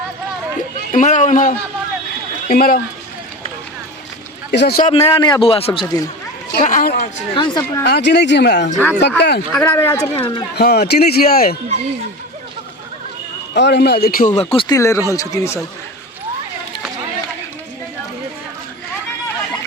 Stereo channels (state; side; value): normal; both; correlation 0.29